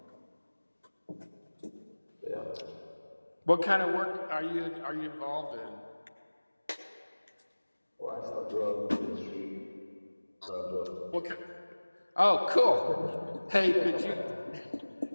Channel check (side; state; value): both; inverted; correlation -1.00